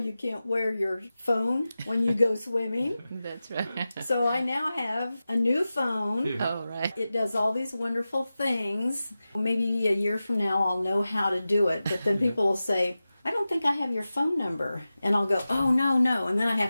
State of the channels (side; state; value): both; inverted; correlation -0.94